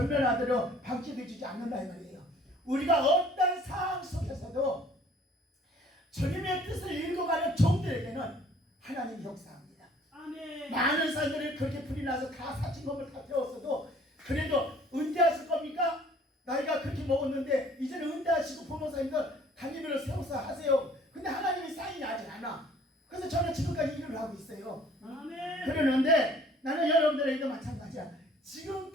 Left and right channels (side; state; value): both; normal; correlation 0.55